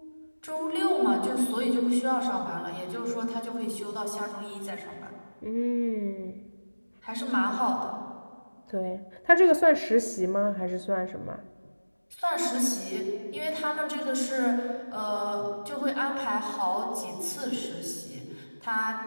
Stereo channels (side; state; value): both; inverted; correlation -1.00